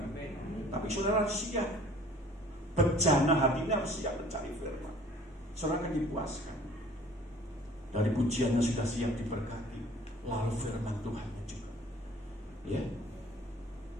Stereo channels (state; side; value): normal; both; correlation 0.52